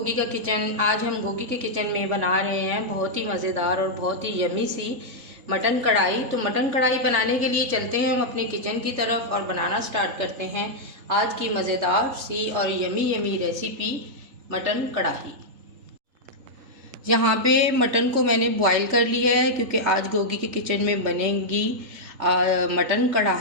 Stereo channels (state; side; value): late; left; 3.3 ms